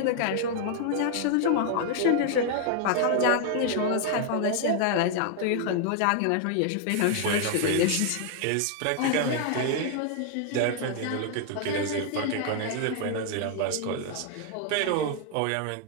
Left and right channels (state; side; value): different; both; correlation 0.00